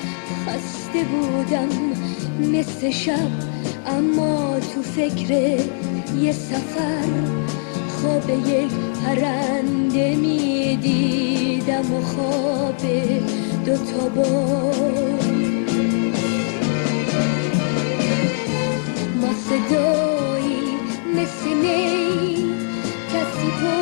خسته بودم مثل شب، اما تو فکر یه سفر خواب یک پرنده می دیدم و خواب دوتا بال. ما صدایی مثل نی کسی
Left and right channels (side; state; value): right; silent; digital silence